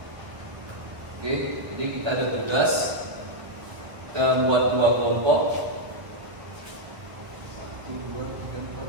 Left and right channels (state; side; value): late; left; 1.3 ms